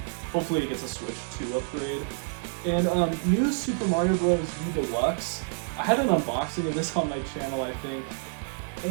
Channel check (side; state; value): left; silent; 59 dB below the other